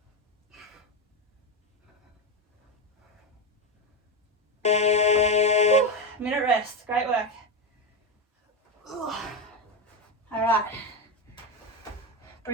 Minute rest, great work. All right,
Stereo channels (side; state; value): both; normal; correlation 0.12